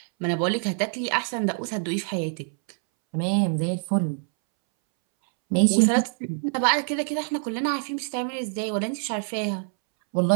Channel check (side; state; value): left; silent; 62 dB below the other